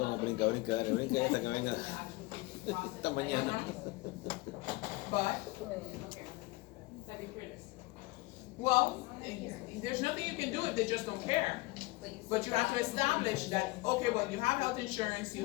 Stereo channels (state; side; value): quieter; right; 22.1 dB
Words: brinca esta que venga esta mañana. But, Second critters. well, there's nothing you can do if they just don't care. But you have to establish that, okay, well, you have health insurance, you